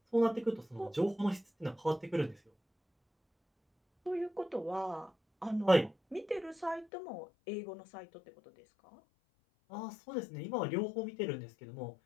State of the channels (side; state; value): right; drops out; at 6.9 s